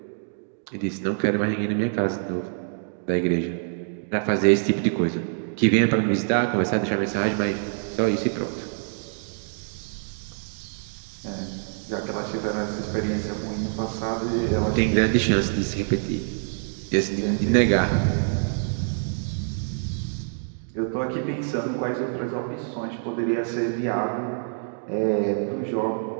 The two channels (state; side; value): silent; left; digital silence